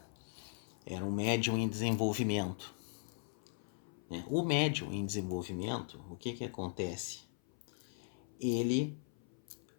era um médium em desenvolvimento, né? O médium em desenvolvimento, o que acontece? Ele,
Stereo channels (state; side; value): silent; right; 52 dB below the other